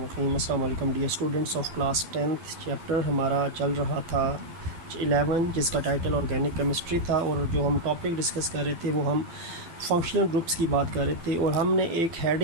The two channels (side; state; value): left; late; 12 ms